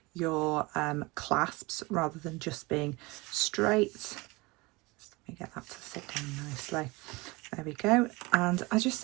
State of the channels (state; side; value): quieter; left; 24.1 dB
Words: your clasps rather than just being straight. Let me get that to sit down nicely. There we go. And I just